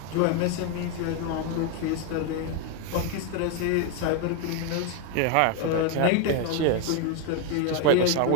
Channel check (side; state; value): both; different; correlation 0.01